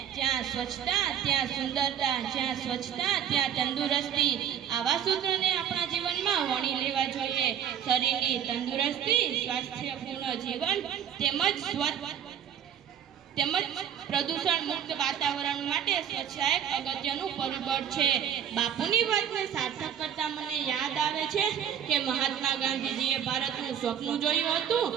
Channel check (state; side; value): quieter; left; 9.0 dB